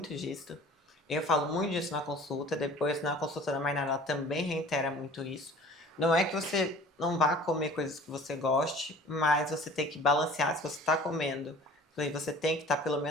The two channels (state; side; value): normal; both; correlation 0.46